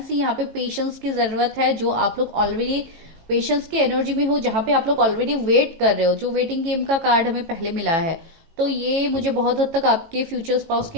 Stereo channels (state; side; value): late; left; 18 ms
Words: सी यहाँ पे पेशेंस की जरूरत है, जो आप लोग ऑलरेडी पेशेंस की एनर्जी में हो, जहां पे आप लोग ऑलरेडी वेट कर रहे हो, जो वेटिंग गेम का कार्ड हमें पहले मिला है। तो ये मुझे बहुत हद तक आपके फ्यूचर स्पाउस के